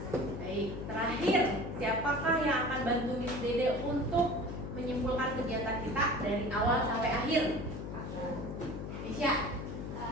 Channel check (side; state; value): left; noise; hum, 6 dB below the sound